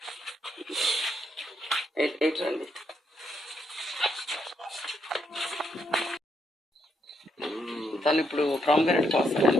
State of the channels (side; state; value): both; normal; correlation 0.77